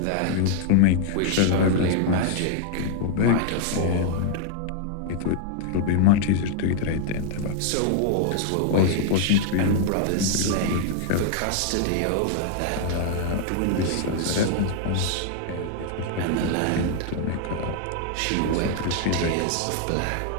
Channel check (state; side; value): different; both; correlation 0.00